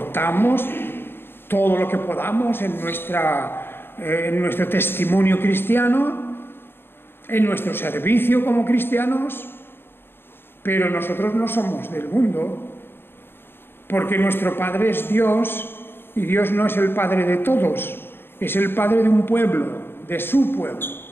todo lo que podamos en nuestro testimonio cristiano, en nuestro servicio como cristianos, pero nosotros no somos del mundo, porque nuestro Padre es Dios, y Dios no es el Padre de todos, es el Padre de un pueblo, de su pueblo.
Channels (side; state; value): right; late; 0.11 ms